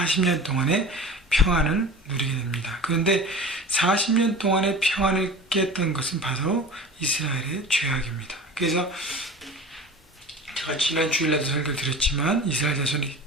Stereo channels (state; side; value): normal; both; correlation 0.37